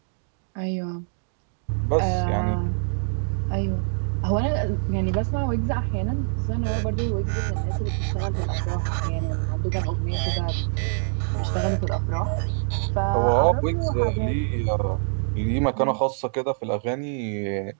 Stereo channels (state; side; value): silent; left; digital silence